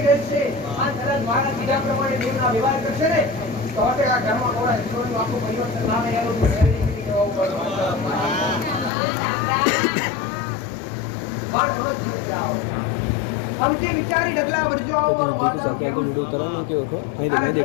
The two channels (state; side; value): drops out; right; at 8.9 s